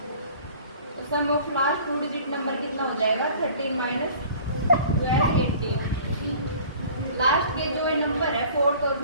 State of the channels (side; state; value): both; inverted; correlation -0.47